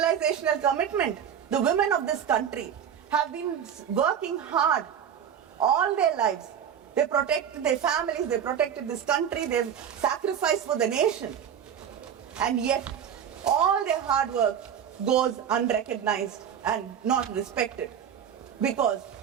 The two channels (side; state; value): left; quieter; 8.6 dB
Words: commitment? The women of this country have been working hard all their lives. They protected their families, they protected this country, they sacrificed for the nation. And yet, all their hard work goes unrecognized and not respected because